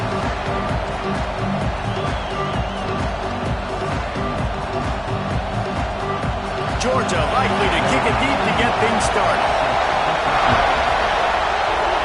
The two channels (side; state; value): both; identical; correlation 1.00